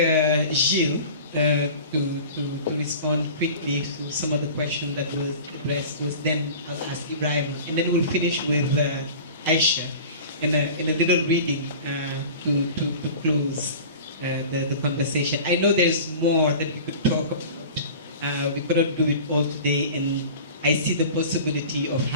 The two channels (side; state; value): both; inverted; correlation -0.38